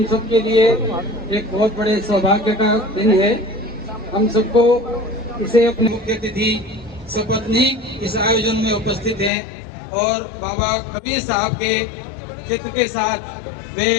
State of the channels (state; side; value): drops out; right; at 9.3 s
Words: सब के लिए एक बहुत बड़े सौभाग्य का दिन है। हम सबको इसे अपने मुख्य अतिथि सपत्नी इस आयोजन में उपस्थित हैं और बाबा कबीर साहब के चित्र के साथ वे